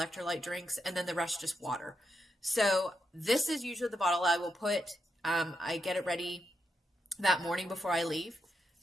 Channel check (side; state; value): both; normal; correlation 0.84